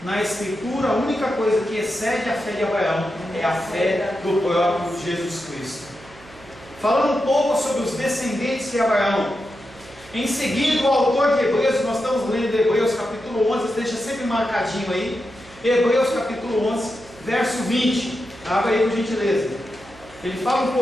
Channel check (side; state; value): right; noise; hum, 22 dB below the sound